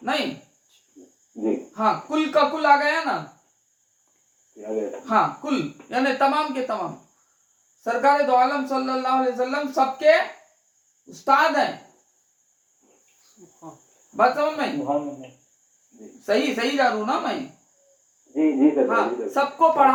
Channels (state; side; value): identical; both; correlation 1.00